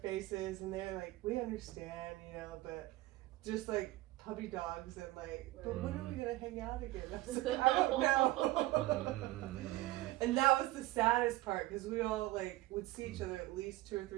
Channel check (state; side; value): quieter; left; 17.9 dB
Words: and they're like, we understand, but just like puppy dogs, and like, but when are we gonna hang out again? I was like, I don't know. And that was the saddest part, because we all like would see each other at least 2 or